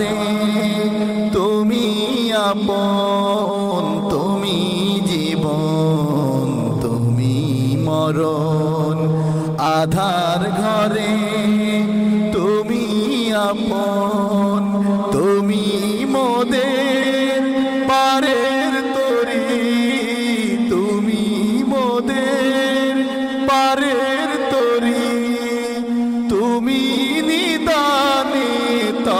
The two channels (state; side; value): identical; both; correlation 1.00